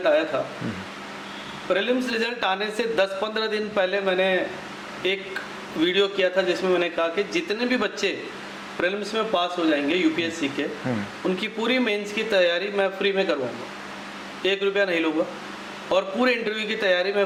आया था, प्रीलिम्स रिजल्ट आने से 10-15 दिन पहले मैंने एक वीडियो किया था जिसमें मैंने कहा कि जितने भी बच्चे प्रीलिम्स में पास हो जाएंगे यूपीएससी के, उनकी पूरी मेंस की तैयारी मैं फ्री में करवाऊंगा, 1 रुपया नहीं लूँगा, और पूरे इंटरव्यू की तैयारी मैं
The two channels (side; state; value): both; identical; correlation 1.00